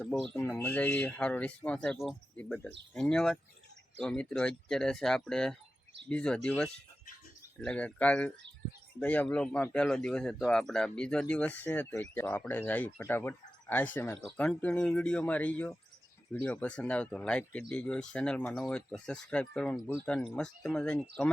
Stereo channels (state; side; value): normal; both; correlation 0.93